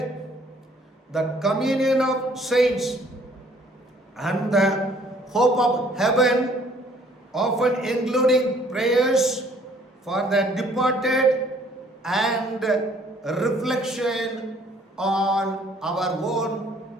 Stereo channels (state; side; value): normal; both; correlation 0.60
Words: the communion of saints, and the hope of heaven, often including prayers for the departed and reflection on our own